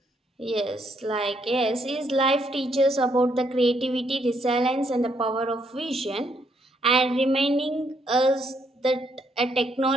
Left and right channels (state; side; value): normal; both; correlation 0.73